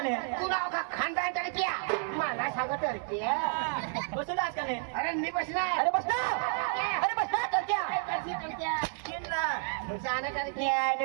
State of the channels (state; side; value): silent; left; 57 dB below the other